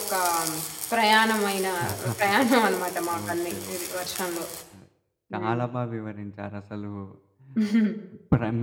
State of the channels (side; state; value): both; identical; correlation 1.00